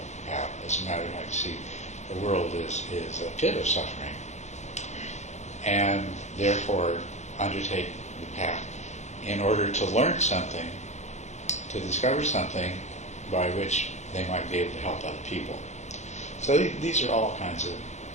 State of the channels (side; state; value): right; late; 0.33 ms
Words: have. As a matter of fact, I see the world is a pit of suffering, and therefore undertake the path in order to learn something, to discover something by which they might be able to help other people. So these are all kinds of